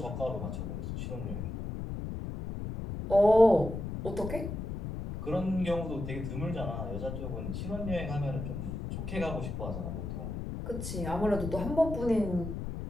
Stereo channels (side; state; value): left; noise; rumble, 5 dB below the sound